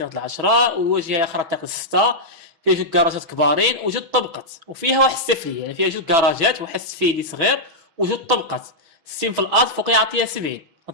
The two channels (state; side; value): late; left; 6.1 ms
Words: د العشرة، والواجهة الأخرى الطريق الستة. فيها جوج كراجات كبارين وجوج طبقات، وفيها واحد السفلية، يعني فيها جوج كراجات واحد السفيلي صغير وجوج طبقات. السين في الارض فوق يعطيها 70.